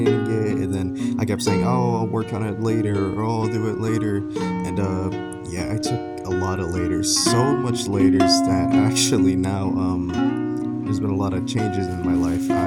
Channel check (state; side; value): identical; both; correlation 1.00